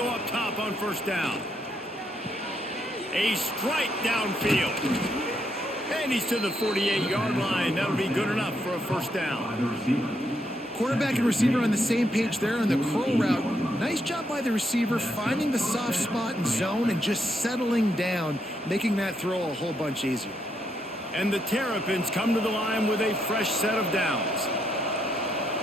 up top on 1st down. A strike downfield. And he's to the 48-yard line. That'll be good enough for a 1st down. Quarterback and receiver on the same page there on the curl route. Nice job by the receiver finding the soft spot and zone and just settling down, making that throw a whole bunch easier. And the Terrapins come to the line with a fresh set of downs.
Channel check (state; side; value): normal; both; correlation 0.77